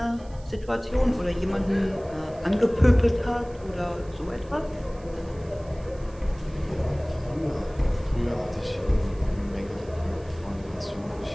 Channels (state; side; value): noise; right; hiss, 27 dB below the sound